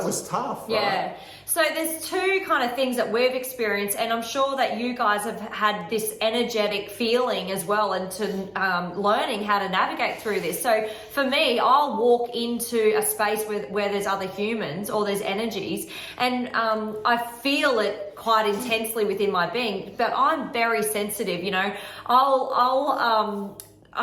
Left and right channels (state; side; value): identical; both; correlation 1.00